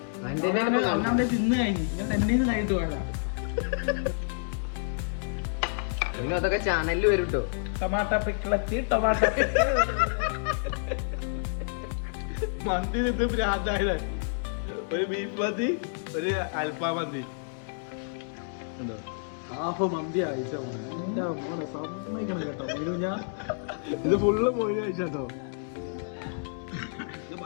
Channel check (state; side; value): silent; right; 59 dB below the other